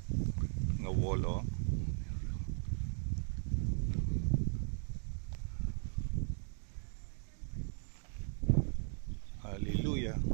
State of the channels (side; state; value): left; silent; 53 dB below the other